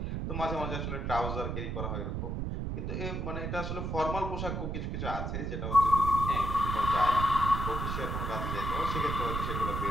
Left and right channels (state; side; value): noise; right; rumble, 2 dB below the sound